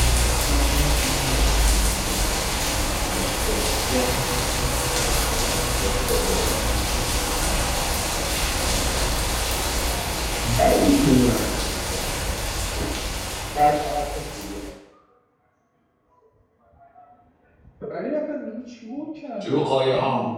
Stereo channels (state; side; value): identical; both; correlation 1.00